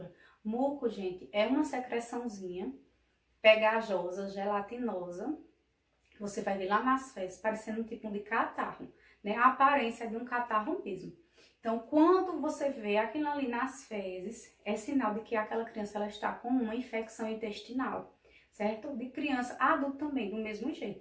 Muco, gente, é uma secreçãozinha pegajosa, gelatinosa, que você vai ver lá nas fezes, parecendo um tipo de catarro, né? A aparência é de um catarro mesmo. Então, quando você vê aquilo ali nas fezes, é sinal de que aquela criança ela está com uma infecção intestinal, certo? De criança, adulto também, do mesmo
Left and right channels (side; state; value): both; identical; correlation 1.00